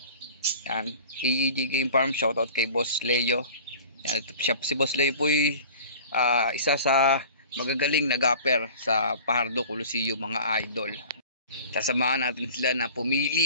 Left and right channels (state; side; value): inverted; both; correlation -0.42